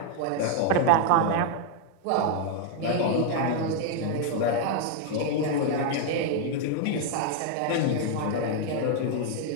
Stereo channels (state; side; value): different; both; correlation 0.00